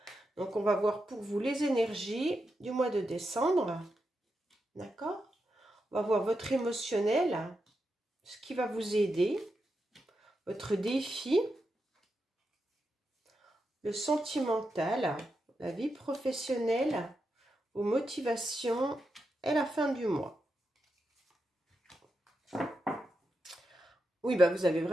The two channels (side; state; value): both; normal; correlation 0.86